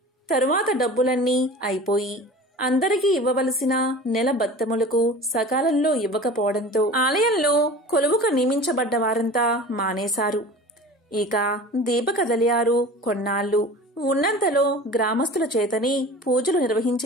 తరువాత డబ్బులన్నీ అయిపోయి అందరికీ ఇవ్వవలసిన నెల బత్తములకు సకాలంలో ఇవ్వకపోవడంతో ఆలయంలో కొలువుకు నియమించబడ్డ వారంతా మానేశారు. ఇక దీపకదలియారు కొన్నాళ్లు ఉన్నంతలో గ్రామస్తుల చేతని పూజలు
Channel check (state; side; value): normal; both; correlation 0.39